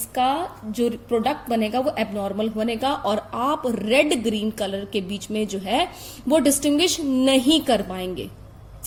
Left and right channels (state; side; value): identical; both; correlation 1.00